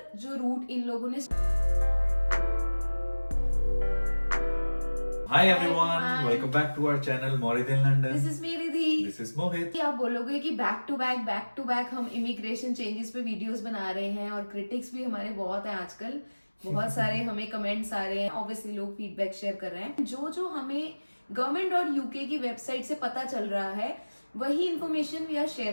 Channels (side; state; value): both; inverted; correlation -1.00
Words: जो रूट इन लोगों ने। Hi everyone, welcome back to our channel Morid in London. This is me Ridhi. This is Mohit. आप बोलोगे कि बैक टू बैक हम इमिग्रेशन चेंजेस पे वीडियोस बना रहे हैं और क्रिटिक्स भी हमारे बहुत हैं आजकल। बहुत सारे हमें कमेंट्स आ रहे हैं, ऑब्वियसली लोग फीडबैक शेयर कर रहे हैं। जो हमें गवर्नमेंट और यूके की वेबसाइट से पता चल रहा है वही information we are